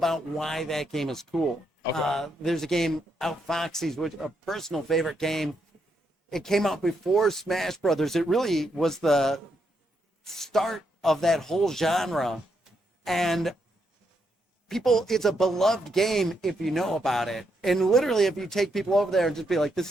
why that game is cool. Okay. There's a game, Outfoxies, which a personal favorite game. It came out before Smash Brothers. It really was the start of that whole genre. And it's a beloved game if you know about it. And literally, if you take people over there and just be like,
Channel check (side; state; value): both; normal; correlation 0.79